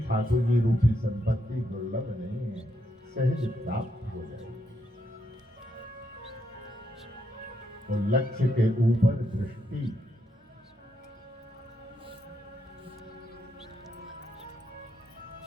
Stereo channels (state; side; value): normal; both; correlation 0.79